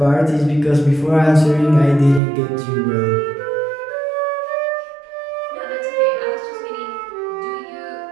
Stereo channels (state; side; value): drops out; left; at 2.2 s